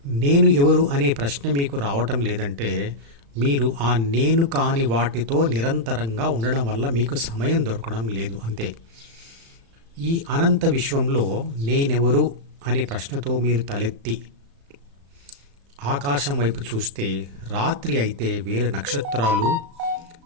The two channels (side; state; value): left; late; 36 ms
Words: నేను ఎవరు అనే ప్రశ్న మీకు రావటం లేదంటే మీరు ఆ నేను కాని వాటితో నిరంతరంగా ఉండడం వల్ల మీకు సమయం దొరకడం లేదు అంతే. ఈ అనంత విశ్వంలో నేనెవరు అనే ప్రశ్నతో మీరు తలెత్తి ఆకాశం వైపు చూస్తే రాత్రి అయితే వేల నక్షత్రాలు,